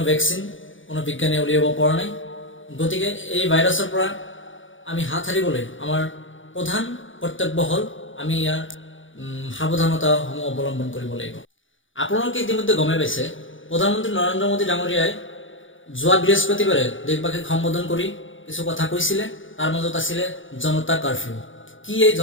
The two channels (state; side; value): late; right; 0.57 ms